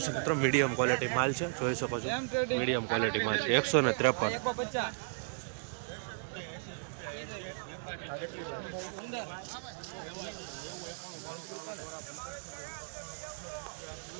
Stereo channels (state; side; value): silent; left; digital silence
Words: મિત્રો મીડિયમ ક્વોલિટી માલ છે જોઈ શકો છો મીડિયમ ક્વોલિટી માલ છે 153